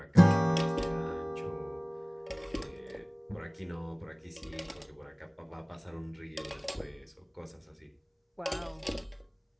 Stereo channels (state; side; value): identical; both; correlation 1.00